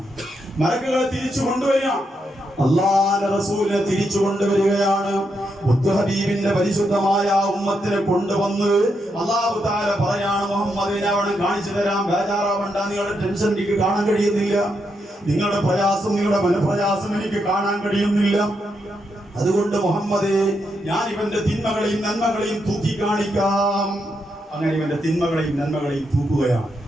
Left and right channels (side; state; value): both; normal; correlation 0.81